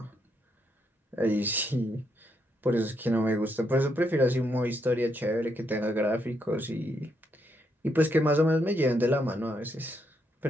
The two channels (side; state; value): both; normal; correlation 0.78